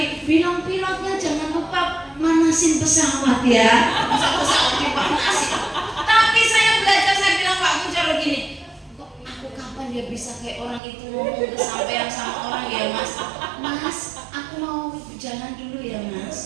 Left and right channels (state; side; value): drops out; left; at 10.8 s